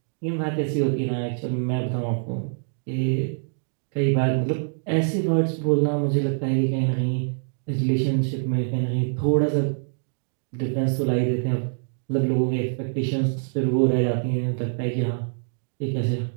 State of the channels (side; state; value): left; silent; digital silence